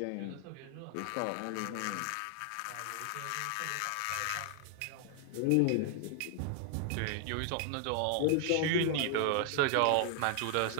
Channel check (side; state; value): both; different; correlation 0.00